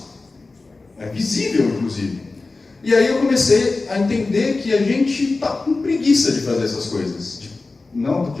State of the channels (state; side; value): quieter; right; 3.6 dB